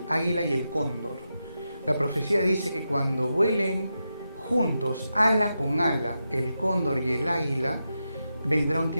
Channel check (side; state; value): both; inverted; correlation -0.88